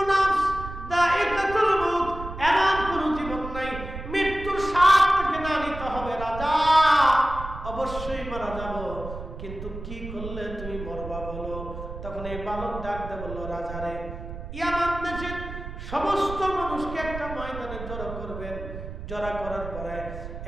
নাফস দায়িকাতুল মউত, এমন কোন জীবন নাই মৃত্যুর স্বাদ থেকে না নিতে হবে। রাজা, অবশ্যই মারা যাব, কিন্তু কি করলে তুমি মরবা বলো। তখন এই বালক ডাক দিয়ে বলল, রাজা রে, ইয়ামান দেশের সমস্ত মানুষকে একটা ময়দানে জড়ো করবেন। জড়া করার পরে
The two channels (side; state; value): right; noise; rumble, 10 dB below the sound